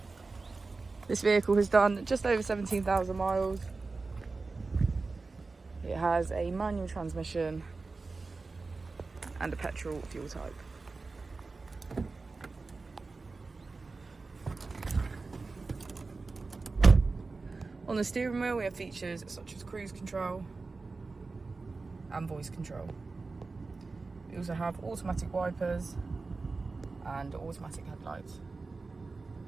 This vehicle has done just over 17,000 miles. It has a manual transmission and a petrol fuel type. On the steering wheel we have features such as cruise control and voice control. We also have automatic wipers and automatic headlights.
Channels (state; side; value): quieter; left; 3.9 dB